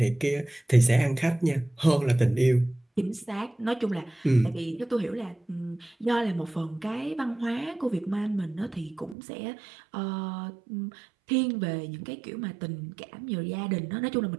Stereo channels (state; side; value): drops out; left; at 9.2 s